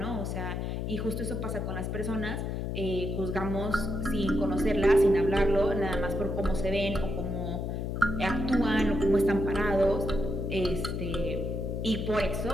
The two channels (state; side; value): noise; left; hum, 3 dB below the sound